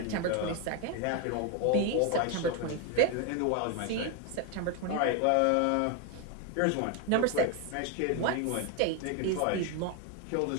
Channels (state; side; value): different; both; correlation 0.01